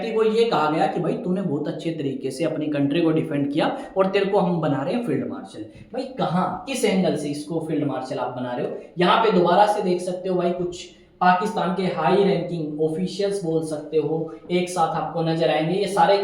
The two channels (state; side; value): identical; both; correlation 1.00